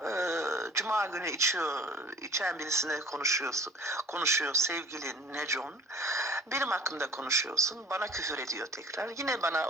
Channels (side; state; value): both; normal; correlation 0.46